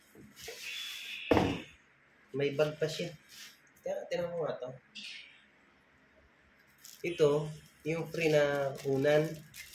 May bag pa siya. Tingnan mo nga to. Ito, yung free na unan.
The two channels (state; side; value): identical; both; correlation 1.00